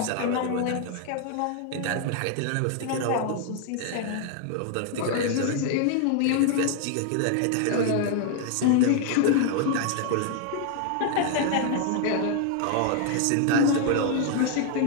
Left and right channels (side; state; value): both; different; correlation 0.00